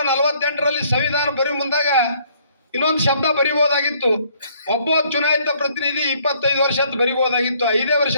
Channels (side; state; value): both; inverted; correlation -0.63